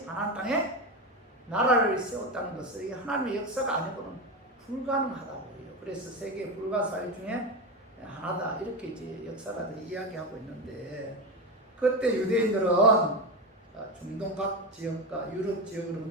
가나안 땅에 나라를 세웠다는 것은 이게 하나님의 역사가 아니고는 불가능하다고 해요. 그래서 세계 불가사의 중에 하나다 이렇게 이제 역사가들이 이야기하고 있는데 그때 유대인들은 중동 각 지역과 유럽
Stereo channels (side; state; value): both; normal; correlation 0.17